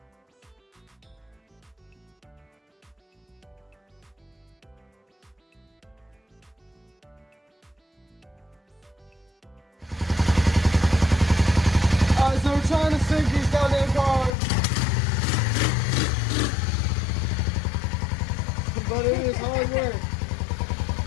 Alright, so we're trying to sink these goddamn cars. But it is hard work.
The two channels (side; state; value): right; drops out; at 14.4 s